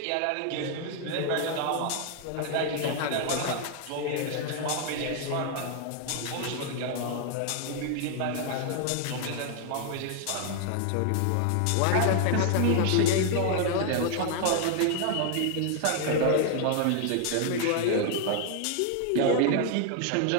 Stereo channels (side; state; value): both; different; correlation 0.00